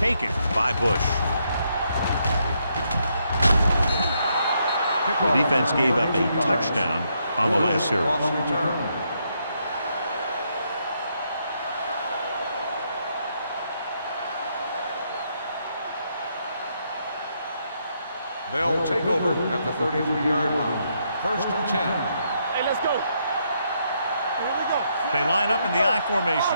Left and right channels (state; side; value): inverted; both; correlation -0.76